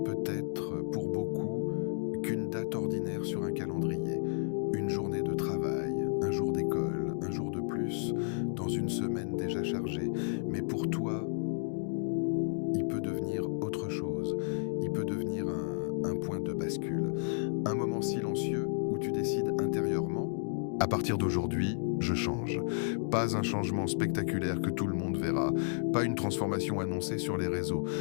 pour beaucoup qu'une date ordinaire sur un calendrier. Une journée de travail, un jour d'école, un jour de plus, dans une semaine déjà chargée. Mais pour toi, il peut devenir autre chose. Il peut devenir un point de bascule. Un moment silencieux où tu décides intérieurement, à partir d'aujourd'hui, je change. Pas un changement spectaculaire que tout le monde verra, pas une transformation annoncée sur les réseaux,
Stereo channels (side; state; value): right; silent; digital silence